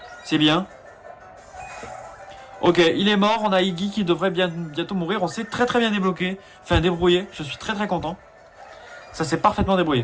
C'est bien. Ok, il est mort, on a Iggy qui devrait bientôt mourir. On s'est très bien débloqué. Enfin, débrouillé, je suis très content. Ça s'est parfaitement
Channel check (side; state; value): both; identical; correlation 1.00